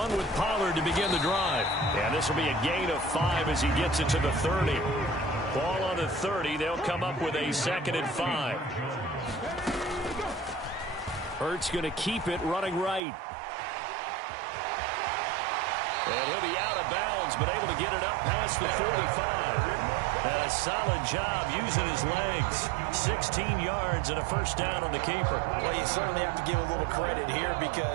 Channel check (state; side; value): drops out; left; at 13.0 s